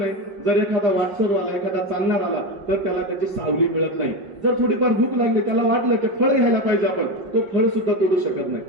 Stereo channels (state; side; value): late; left; 5.5 ms